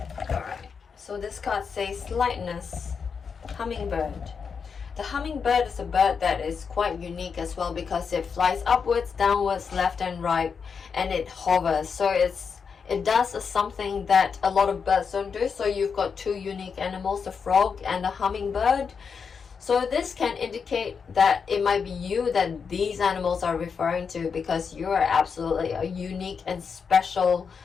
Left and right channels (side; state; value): right; quieter; 6.0 dB